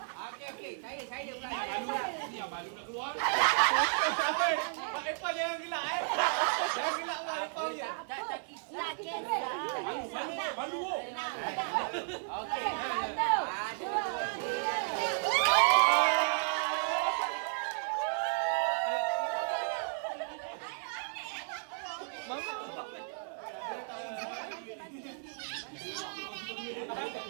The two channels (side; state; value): left; silent; 55 dB below the other